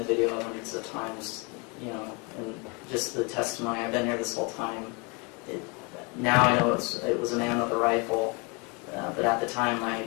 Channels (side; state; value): right; quieter; 31.2 dB